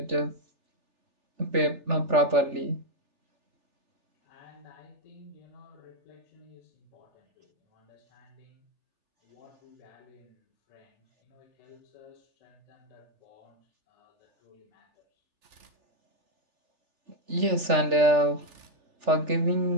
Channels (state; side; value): late; left; 3.4 ms